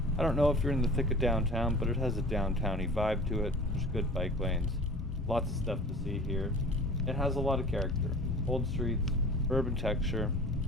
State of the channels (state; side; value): normal; both; correlation 0.42